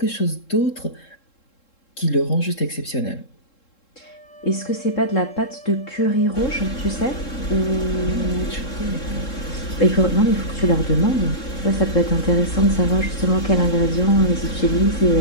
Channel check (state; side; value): late; right; 3.7 ms